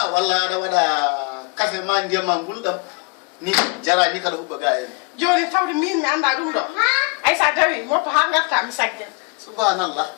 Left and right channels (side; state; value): right; quieter; 31.4 dB